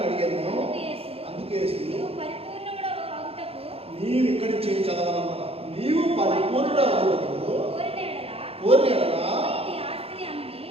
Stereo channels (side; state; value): left; late; 0.28 ms